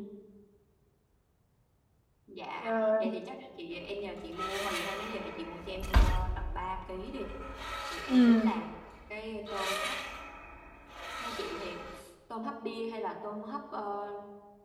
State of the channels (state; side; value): identical; both; correlation 1.00